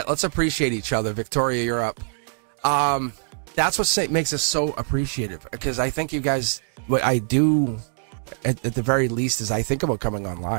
appreciate each other. Victoria, you're up. That's what makes us so appreciative, because I think you guys, what I do at the very least is I think about coming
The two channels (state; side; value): silent; left; digital silence